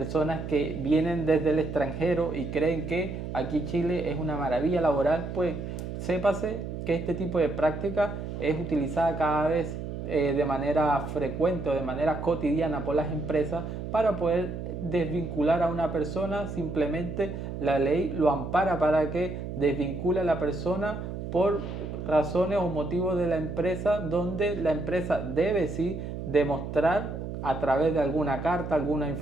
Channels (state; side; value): noise; right; hum, 6 dB below the sound